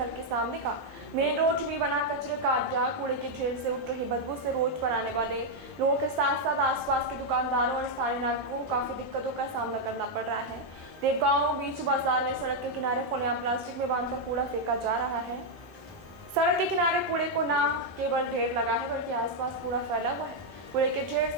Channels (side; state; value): right; late; 1.3 ms